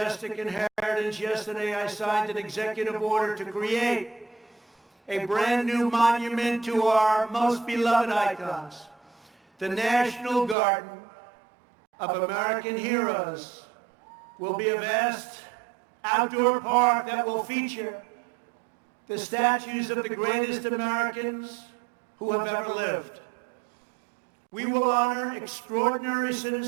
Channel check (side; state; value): left; drops out; at 10.6 s